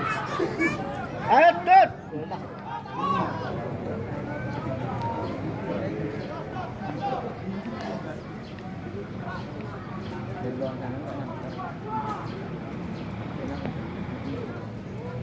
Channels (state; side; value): identical; both; correlation 1.00